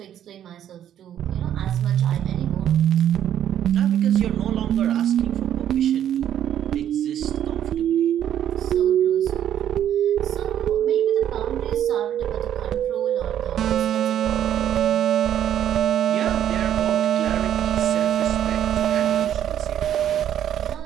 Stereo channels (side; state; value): left; quieter; 10.5 dB